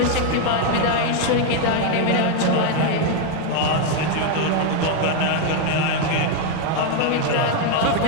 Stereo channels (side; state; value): both; different; correlation 0.01